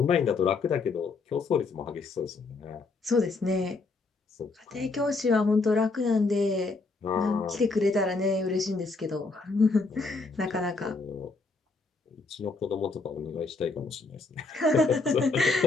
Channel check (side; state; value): right; quieter; 3.9 dB